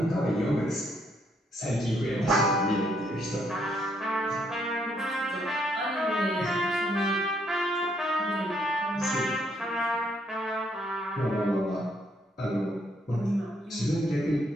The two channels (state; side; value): normal; both; correlation 0.72